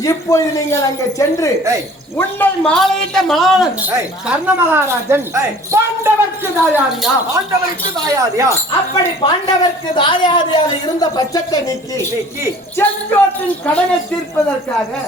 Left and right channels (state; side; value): normal; both; correlation 0.49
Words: இப்பொழுது நீங்கள் அங்கே சென்று உன்னை மாலையிட்ட மலாளன் கர்ண மகாராஜன் பாண்டவர்க்கு தாயாதியா அப்படி பாண்டவர்க்கு தாயாதியாக இருந்த பட்சத்தை நீக்கி செங்கோட்டின் கடனை தீர்ப்பதற்காக